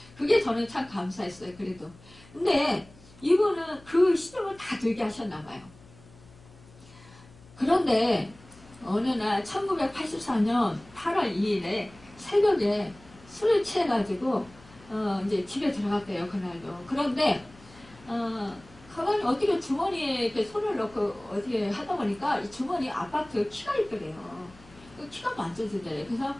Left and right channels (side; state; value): left; noise; hum, 24 dB below the sound